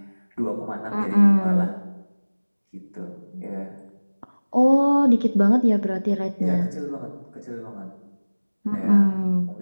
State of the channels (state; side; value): inverted; both; correlation -1.00